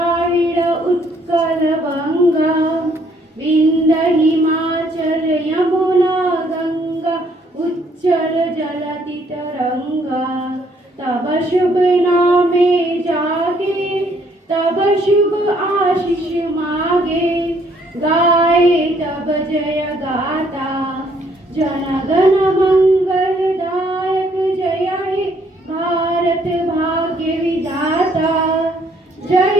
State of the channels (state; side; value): normal; both; correlation 0.66